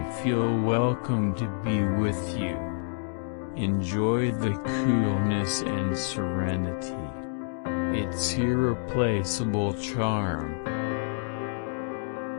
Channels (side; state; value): right; silent; digital silence